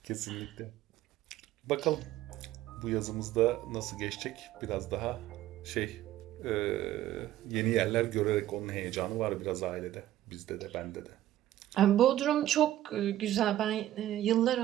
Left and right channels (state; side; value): quieter; left; 13.5 dB